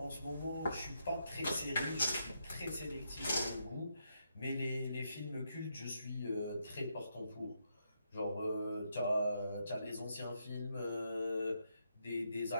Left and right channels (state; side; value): inverted; both; correlation -0.80